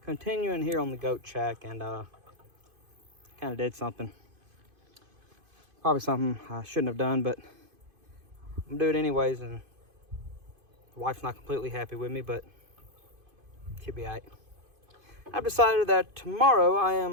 continuing here on the goat shack, and kind of did something, probably something I shouldn't have done, but I'm gonna do it anyways, and the wife's not completely happy with me, but she'll be all right. I've decided that tomorrow I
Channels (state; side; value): late; left; 2.5 ms